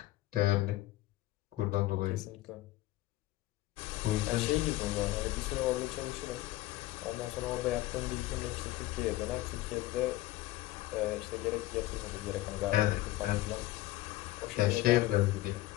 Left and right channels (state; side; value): quieter; right; 16.6 dB